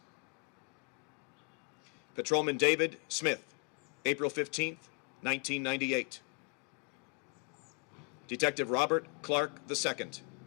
Patrolman David Smith, April 15th, 1998. Detective Robert Clark II,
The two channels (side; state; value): right; quieter; 34.7 dB